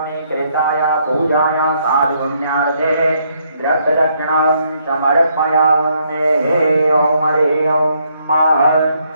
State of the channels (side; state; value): both; inverted; correlation -0.72